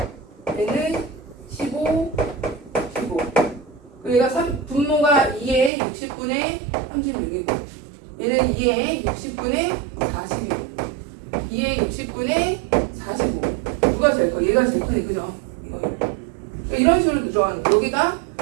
얘는 15, 15 그리고 얘가 분모가 2에 60분의 얘가 제일 크네, 그죠? 이거. 그러니까 이런 식으로 들어가는 거. 여기가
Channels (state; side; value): drops out; left; at 5.7 s